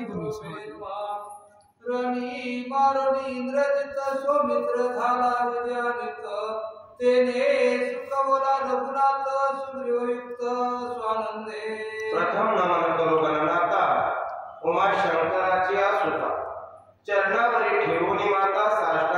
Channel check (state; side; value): identical; both; correlation 1.00